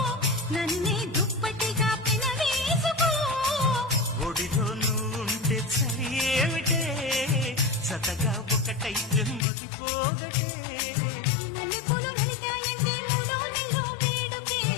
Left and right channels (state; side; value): drops out; right; at 9.5 s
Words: నన్నే దుప్పటిగా పెనవేసుకో ఒడిలో నువ్వుంటే చలి ఏమిటే సతగా ఒకటైతే మతిపోగటే మల్లెపూలు నలిగాయంటే మూడో నెలలో వేడుకే